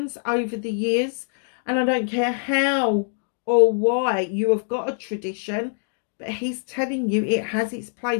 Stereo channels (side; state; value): right; silent; 59 dB below the other